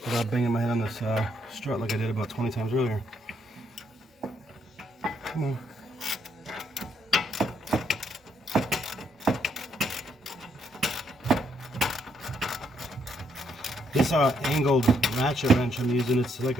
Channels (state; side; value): normal; both; correlation 0.74